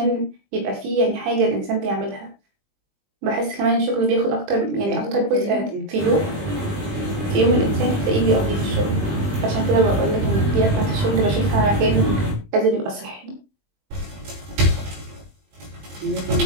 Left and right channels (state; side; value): late; left; 20 ms